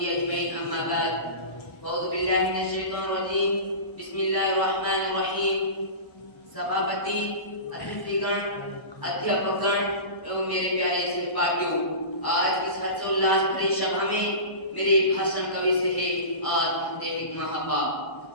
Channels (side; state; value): right; late; 1.1 ms